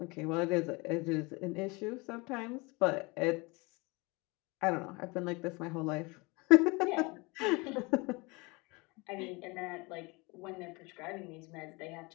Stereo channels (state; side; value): quieter; right; 26.4 dB